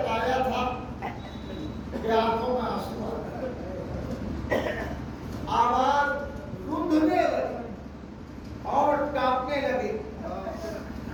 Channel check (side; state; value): both; identical; correlation 1.00